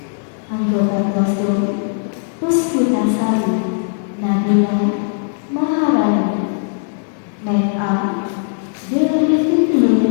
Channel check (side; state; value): right; silent; 67 dB below the other